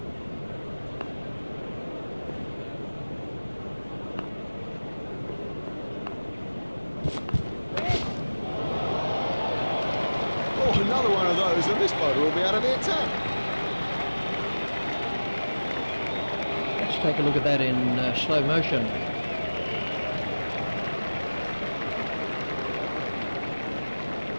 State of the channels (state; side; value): inverted; both; correlation -1.00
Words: seems that this bowler will be out of the attack. Let's take a look at that in slow motion.